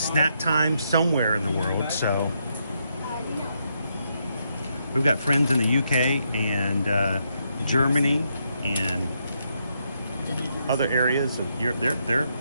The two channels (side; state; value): both; inverted; correlation -0.79